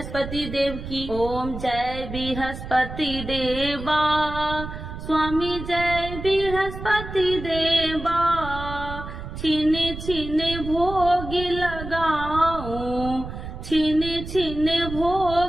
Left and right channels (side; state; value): right; noise; rumble, 9 dB below the sound